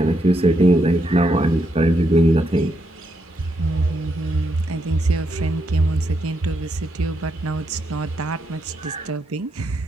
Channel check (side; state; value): both; normal; correlation 0.80